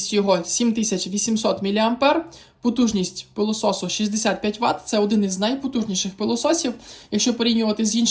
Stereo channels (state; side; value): identical; both; correlation 1.00